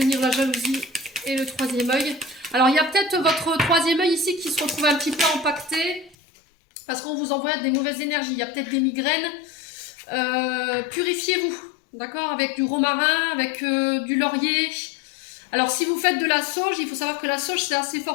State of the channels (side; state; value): right; drops out; at 6.2 s